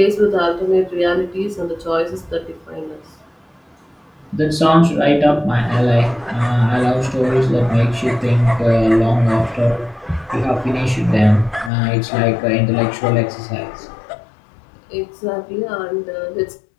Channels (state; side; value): drops out; right; at 11.7 s